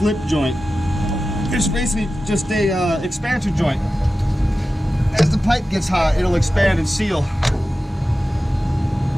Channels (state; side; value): normal; both; correlation 0.94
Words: joint. It's basically just a expansion joint. As the pipe gets hot, it'll expand and seal.